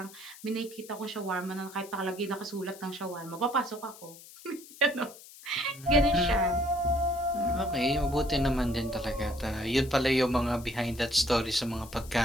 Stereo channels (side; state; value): left; noise; hiss, 19 dB below the sound